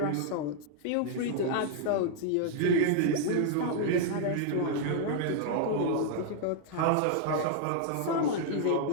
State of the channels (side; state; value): both; different; correlation -0.01